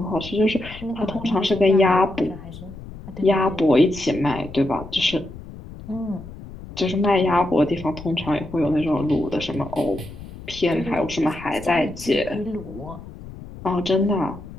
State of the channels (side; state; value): left; noise; rumble, 15 dB below the sound